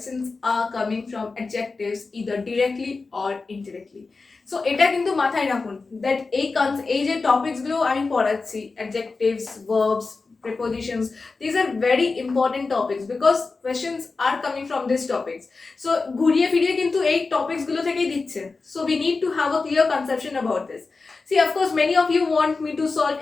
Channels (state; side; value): quieter; right; 4.1 dB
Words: are coming from adjectives either directly or indirectly. So এটা কিন্তু মাথায় রাখুন that এই যে টপিকসগুলো আমি পড়াচ্ছি adjectives verbs prepositions, these are very important topics because questions are coming from these topics. So ঘুরিয়ে ফিরিয়ে কিন্তু এই topics গুলো থেকেই দিচ্ছে. So we need to have a clear conception about this. See, of course, many of you want me to solve